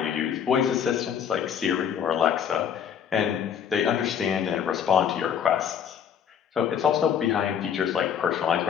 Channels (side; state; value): right; quieter; 8.3 dB